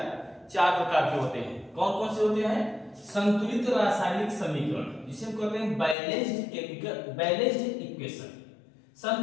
चार प्रकार के होते हैं। कौन कौन से होते हैं? संतुलित रासायनिक समीकरण, जिसे हम कहते हैं बैलेंस्ड केमिकल बैलेंस्ड इक्वेशन।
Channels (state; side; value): drops out; right; at 6.0 s